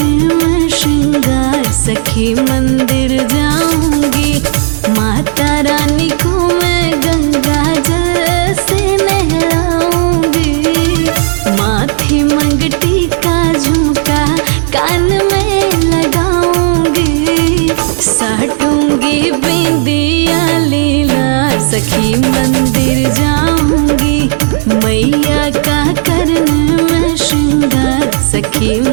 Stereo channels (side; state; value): left; silent; digital silence